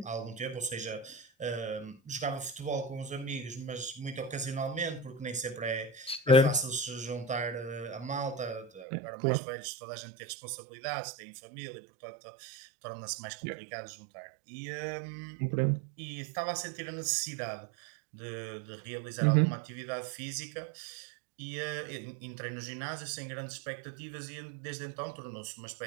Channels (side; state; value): left; drops out; at 8.8 s